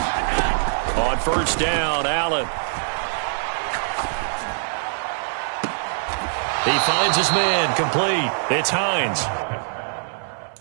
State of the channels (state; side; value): silent; left; 57 dB below the other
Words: On first down, Allen. He finds his man, complete. It's Hines.